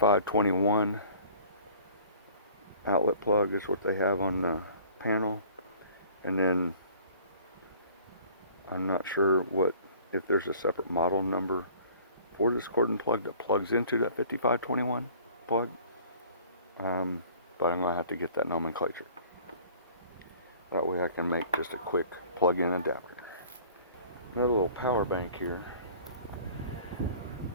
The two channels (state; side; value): inverted; both; correlation -0.50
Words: outlet plug is what they have on the panel. And then I'm not sure if there's a separate model number for this cordon plug that plugs into that 5521 plug. But I'm going to have to get that nomenclature. That way I can make just a quick plug-in adapter. Another little power bank here.